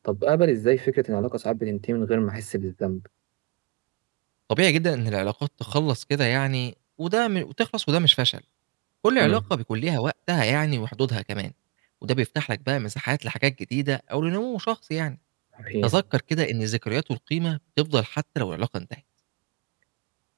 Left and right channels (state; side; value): quieter; left; 24.0 dB